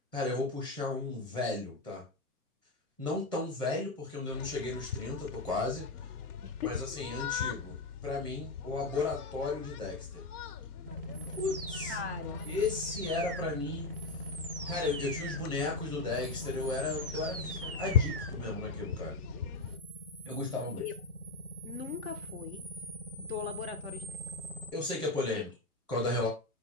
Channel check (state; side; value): quieter; right; 3.2 dB